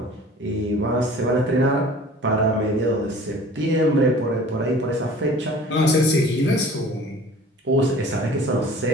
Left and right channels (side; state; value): both; normal; correlation 0.46